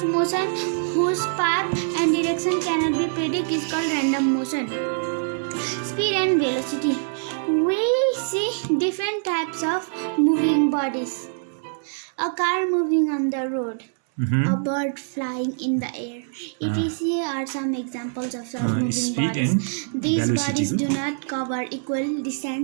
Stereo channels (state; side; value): silent; left; 63 dB below the other